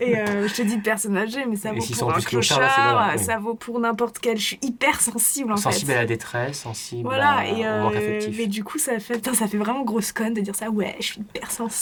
je te dis de personnes âgées, mais ça Et vaut s'ils pour sont un plus clochards, clochard, là, c'est voilà, ça vaut pour n'importe quel. Je suis hyper sensible, en sensible fait. à la détresse, sensible Voilà, et au manque affectif. mais du coup, ça fait vraiment grosse conne de dire ça. Ouais, je suis hyper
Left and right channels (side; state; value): both; identical; correlation 1.00